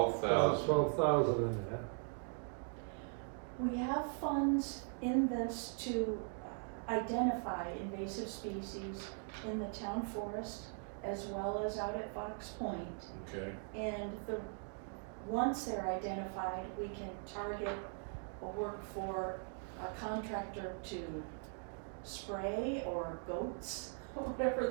12,000 in there. We have funds in this to identify invasive species in the town forest as well as out at Fox Point. Okay, And once they're identified, we can target or work for a contractor to spray or goats, whatever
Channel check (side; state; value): left; silent; 51 dB below the other